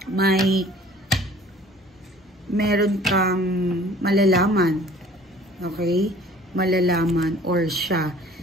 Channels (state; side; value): normal; both; correlation 0.50